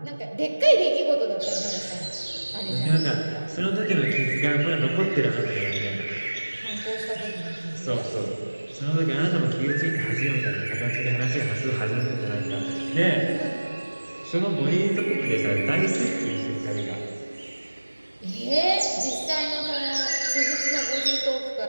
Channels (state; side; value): inverted; both; correlation -1.00